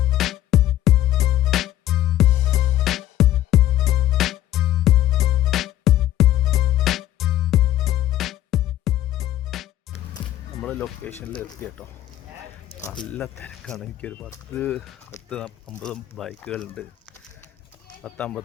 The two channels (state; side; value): quieter; right; 13.3 dB